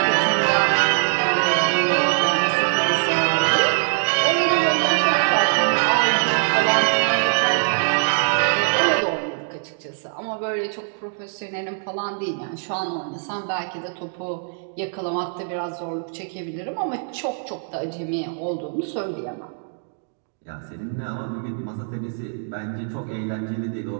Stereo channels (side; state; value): left; silent; digital silence